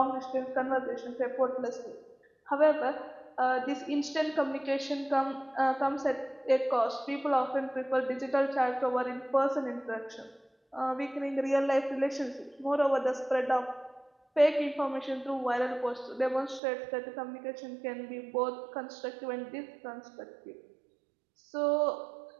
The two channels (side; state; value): left; drops out; at 16.6 s